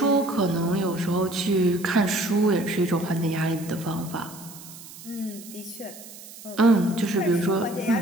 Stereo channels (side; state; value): right; noise; hiss, 17 dB below the sound